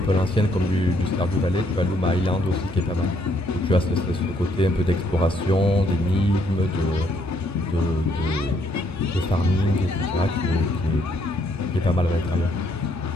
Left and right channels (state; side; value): normal; both; correlation 0.70